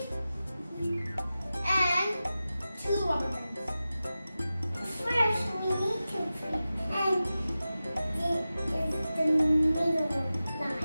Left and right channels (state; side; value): inverted; both; correlation -0.94